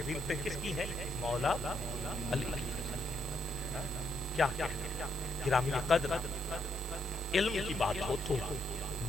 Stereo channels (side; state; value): left; noise; hiss, 23 dB below the sound